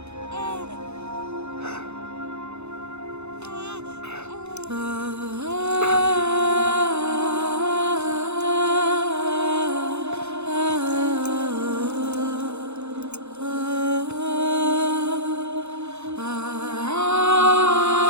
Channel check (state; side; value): late; left; 0.81 ms